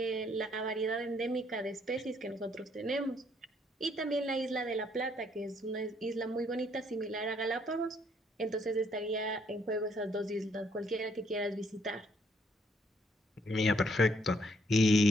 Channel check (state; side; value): normal; both; correlation 0.69